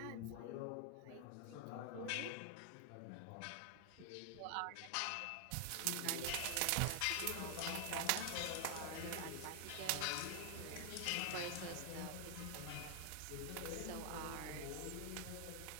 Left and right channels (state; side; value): different; both; correlation 0.00